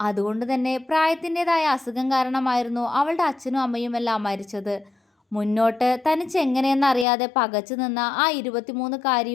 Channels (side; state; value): right; drops out; at 7.1 s